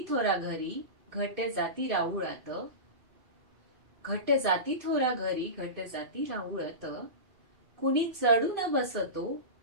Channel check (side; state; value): left; late; 2.5 ms